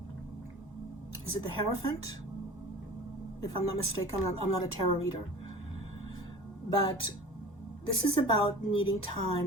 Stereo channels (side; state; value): both; normal; correlation 0.40